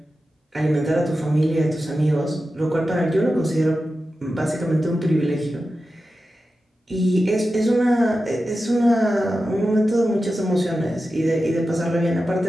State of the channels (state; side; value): normal; both; correlation 0.92